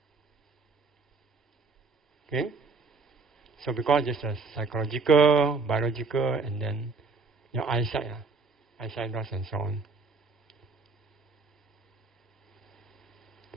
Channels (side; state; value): left; quieter; 4.3 dB